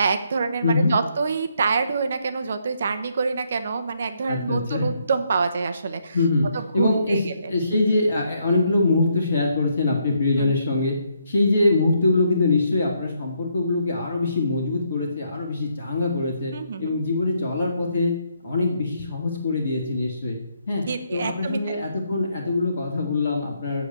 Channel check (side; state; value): both; inverted; correlation -0.73